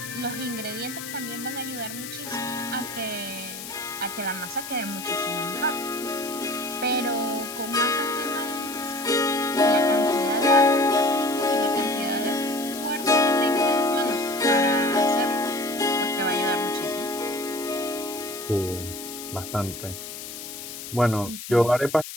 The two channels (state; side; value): noise; left; hiss, 10 dB below the sound